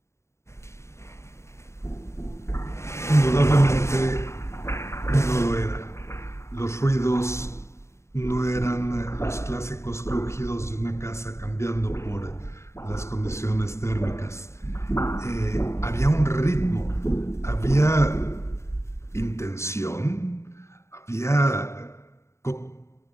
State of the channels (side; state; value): right; late; 0.13 ms